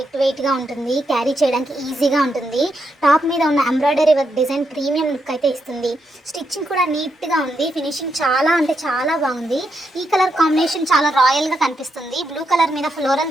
వెయిట్ గా ఉంటుంది, క్యారీ చేయడానికి ఈజీగా ఉంటుంది. టాప్ మీద ఉన్న embroidery work design premium look అయితే ఇస్తుంది. స్టిచ్చింగ్ కూడా నీట్ గా ఉంది, ఫినిషింగ్ చాలా అంటే చాలా బాగుంది. ఈ కలర్ కాంబినేషన్ చాలా రాయల్ గా కనిపిస్తుంది. బ్లూ కలర్ మీద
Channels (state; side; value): normal; both; correlation 0.82